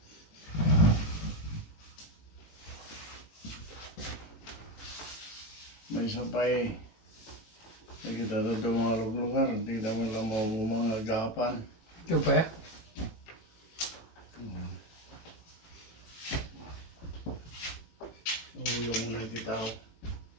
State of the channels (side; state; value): right; late; 18 ms